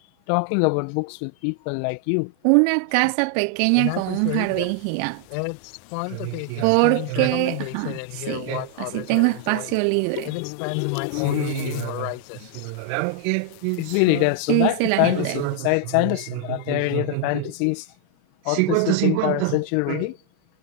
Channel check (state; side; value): different; both; correlation 0.00